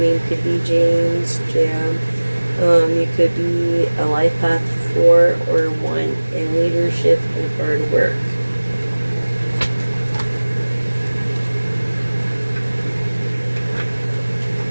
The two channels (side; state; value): both; inverted; correlation -1.00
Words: could be James, Jam. You could be a life path 4 or 1 in leadership and hard work.